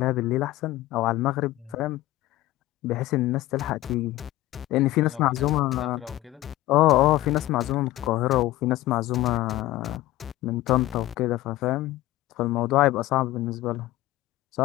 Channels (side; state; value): right; quieter; 16.6 dB